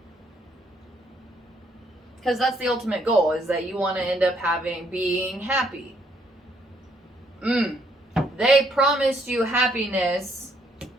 Because that's the ultimate goal, is that you want to end up being happy. They promised you happiness,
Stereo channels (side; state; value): both; normal; correlation 0.70